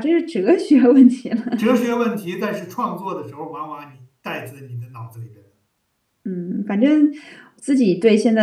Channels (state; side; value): identical; both; correlation 1.00